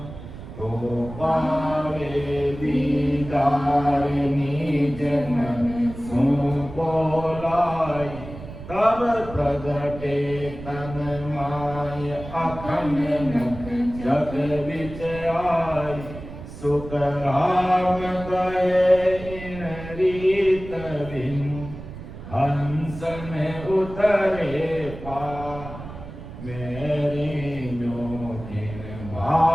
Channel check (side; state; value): right; noise; rumble, 12 dB below the sound